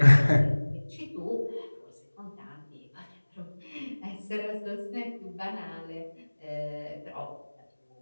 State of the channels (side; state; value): both; inverted; correlation -1.00